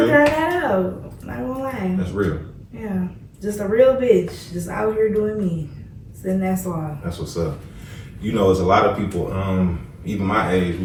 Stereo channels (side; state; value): both; identical; correlation 1.00